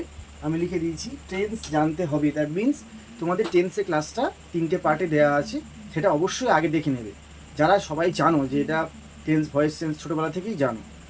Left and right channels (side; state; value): both; identical; correlation 1.00